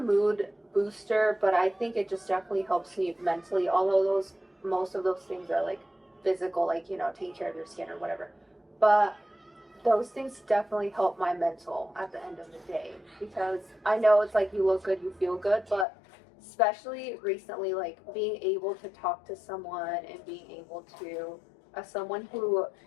booster, but I think it just definitely helps me mentally. Although most of those things are like physical, like taking care of your skin or whatever. But those things definitely help my mental at the end of the day, because I know it's like you look good, you feel good, but especially recently, like being able to talk to someone and being able to, as someone who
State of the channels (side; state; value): right; drops out; at 15.9 s